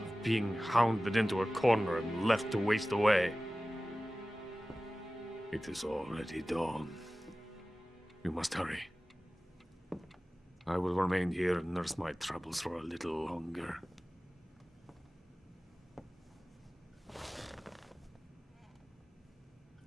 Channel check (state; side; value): normal; both; correlation 0.97